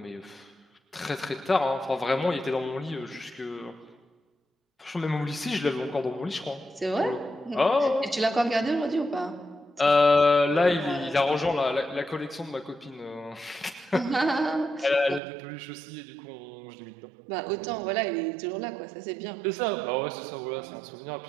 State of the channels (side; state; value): left; drops out; at 15.2 s